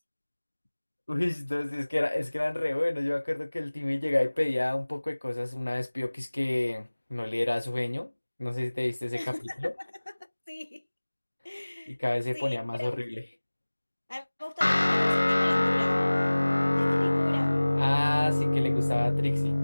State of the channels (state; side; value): inverted; both; correlation -1.00